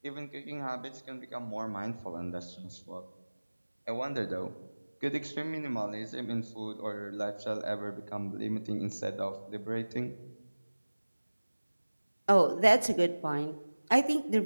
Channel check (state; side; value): inverted; both; correlation -1.00